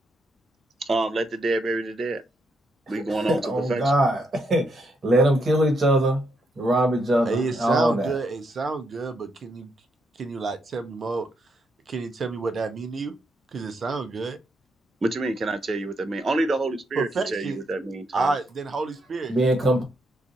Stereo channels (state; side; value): normal; both; correlation 0.78